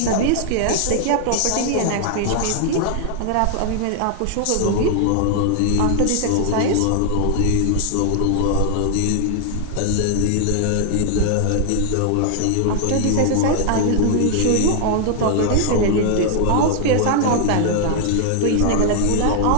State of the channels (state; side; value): different; both; correlation 0.00